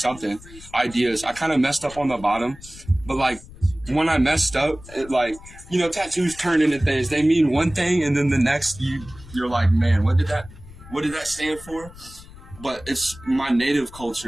ideas. I kind of messed up on the bottom, but like when I messed up, it like, tattoos turn into things. They mean one thing, and then the next you're like, man, what did that stand for? But it's my native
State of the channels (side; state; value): left; noise; rumble, 19 dB below the sound